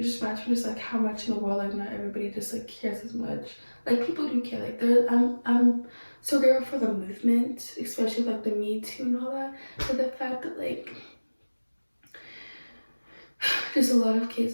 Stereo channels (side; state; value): both; inverted; correlation -1.00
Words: just reminds me just like how much in the world like not everybody just like cares as much. Like people do care. Like I'm so grateful for the movement, especially like the Me Too and all that. But the fact that like there's a lot of